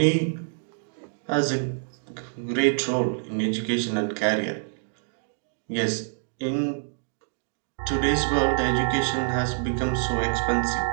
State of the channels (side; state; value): left; silent; digital silence